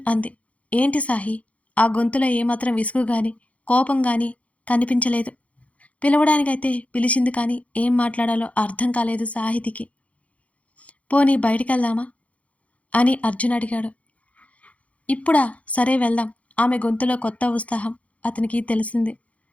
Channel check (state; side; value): late; right; 0.065 ms